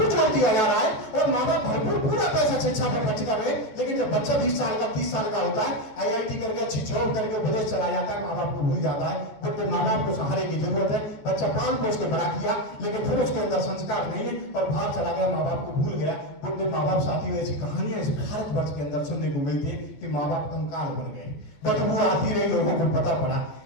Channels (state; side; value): late; right; 14 ms